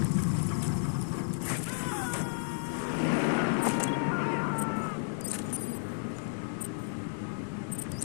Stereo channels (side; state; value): right; silent; digital silence